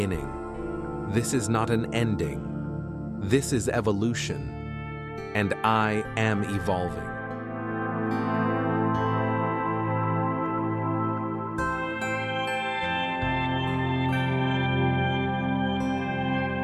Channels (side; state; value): both; identical; correlation 1.00